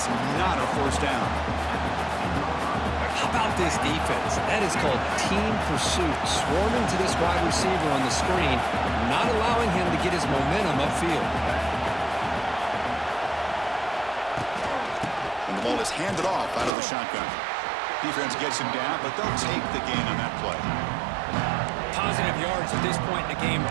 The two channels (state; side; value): drops out; left; at 16.7 s